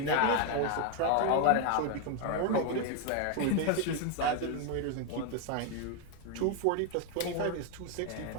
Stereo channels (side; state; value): both; different; correlation 0.01